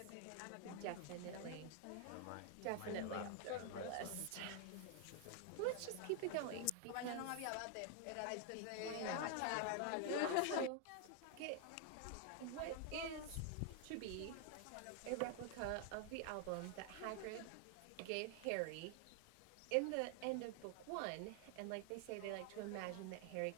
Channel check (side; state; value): both; different; correlation 0.00